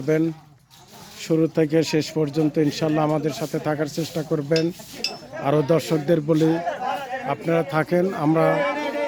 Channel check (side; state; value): both; identical; correlation 1.00